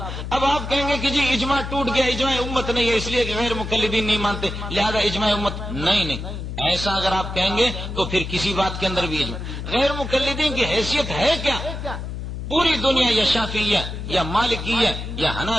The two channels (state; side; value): noise; left; hum, 6 dB below the sound